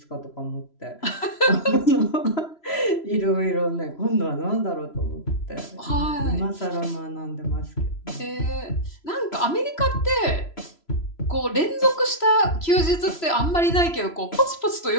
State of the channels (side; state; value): right; late; 3.0 ms